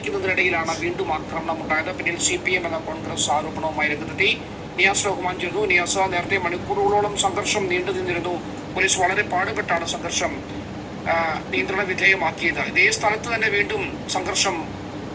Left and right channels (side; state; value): both; identical; correlation 1.00